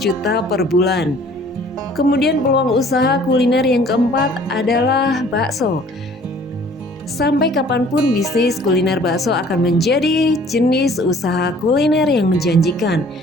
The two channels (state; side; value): normal; both; correlation 0.53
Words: per bulan. Kemudian peluang usaha kuliner yang keempat adalah bakso. Sampai kapanpun bisnis kuliner bakso akan menjadi jenis usaha kuliner yang menjanjikan